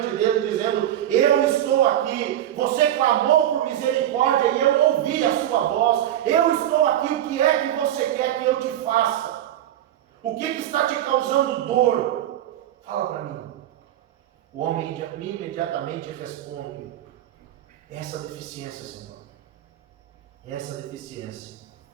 dele dizendo: eu estou aqui, você clamou por misericórdia e eu ouvi a sua voz, eu estou aqui, o que é que você quer que eu te faça? O que está te causando dor? Fala para mim. O homem imediatamente responde: essa deficiência, Senhor, essa deficiência,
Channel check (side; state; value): left; quieter; 12.1 dB